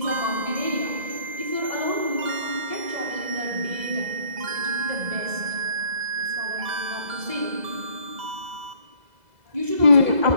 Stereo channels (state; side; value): late; left; 2.0 ms